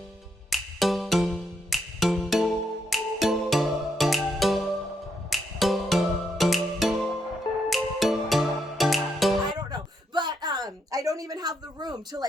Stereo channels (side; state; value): both; normal; correlation 0.78